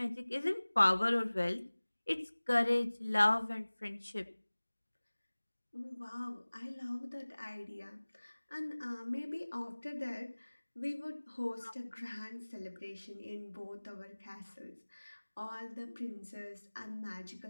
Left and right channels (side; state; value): both; inverted; correlation -1.00